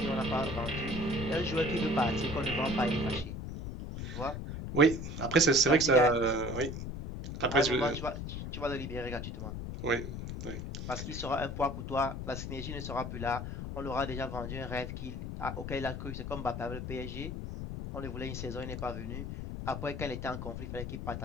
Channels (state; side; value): noise; left; rumble, 6 dB below the sound